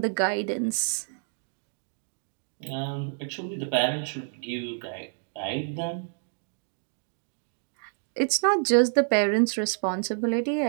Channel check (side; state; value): left; silent; digital silence